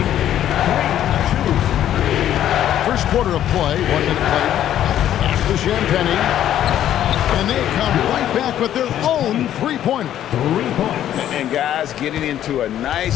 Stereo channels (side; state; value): right; quieter; 11.4 dB